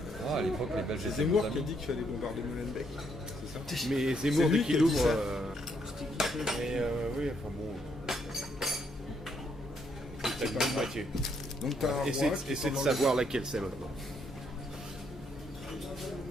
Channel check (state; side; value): normal; both; correlation 0.73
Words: Ah, à l'époque, les Belges C'est étaient Zemmour nos qui a amis. dit qu'il fallait bombarder Molenbeek. C'est ça? Mais Zemmour, C'est lui dès qui a qu'il dit ouvre. ça. Mais oui, enfin bon. C'est pas une moitié. Donc t'as un Essaie roi qui de pendant savoir laquelle c'est maintenant.